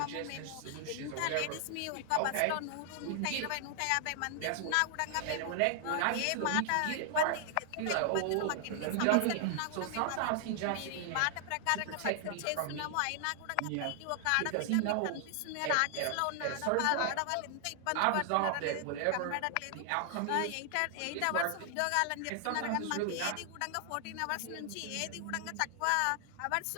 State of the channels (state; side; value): different; both; correlation 0.00